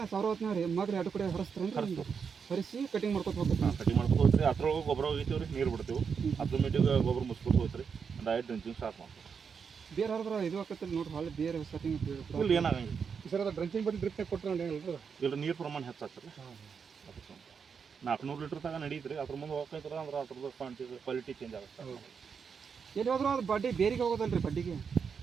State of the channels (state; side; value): quieter; left; 6.2 dB